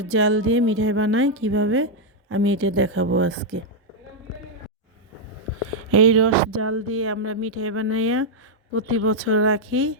জাল দিয়ে মিঠাই বানাই কিভাবে আমি এটা দেখাবো আজকে। এই রস জাল দিয়ে আমরা মিঠাই বানাইয়া প্রতি বছর রাখি।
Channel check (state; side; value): normal; both; correlation -0.02